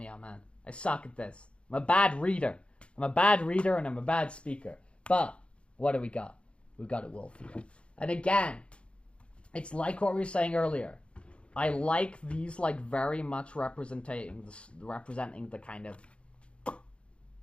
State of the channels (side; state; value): right; late; 0.059 ms